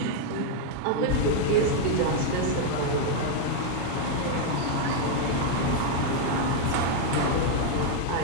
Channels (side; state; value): both; different; correlation 0.00